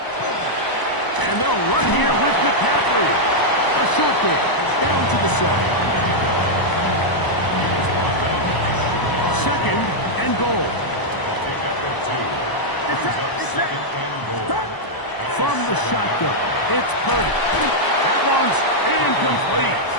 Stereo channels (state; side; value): late; right; 1.0 ms